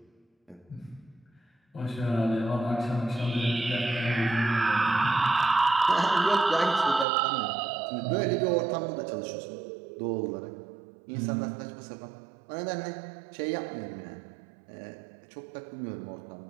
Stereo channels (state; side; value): drops out; left; at 7.1 s